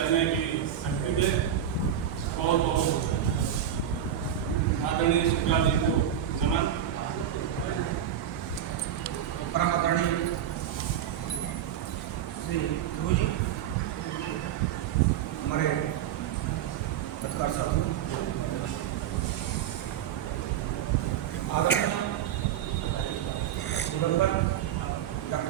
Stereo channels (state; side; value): quieter; left; 10.0 dB